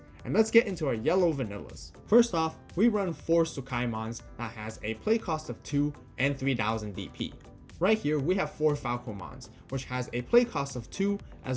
And let's get into our yellow vanillas. First off, we run 4 Sukaimons that has a play cost of 2 and 3000 DP. Right here, we have 4 Falcomons, which has a play cost of 2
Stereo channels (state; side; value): identical; both; correlation 1.00